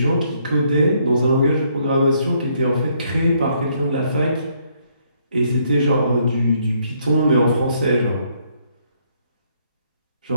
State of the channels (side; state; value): both; inverted; correlation -0.70